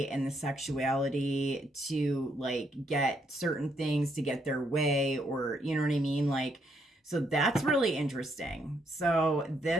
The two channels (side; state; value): both; normal; correlation 0.74